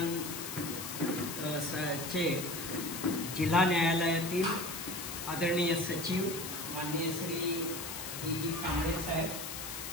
चे जिल्हा न्यायालयातील आदरणीय सचिव माननीय श्री जी कांबळे साहेब,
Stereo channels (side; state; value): left; noise; hiss, 7 dB below the sound